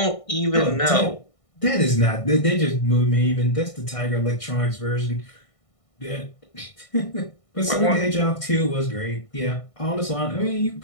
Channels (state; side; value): late; right; 1.6 ms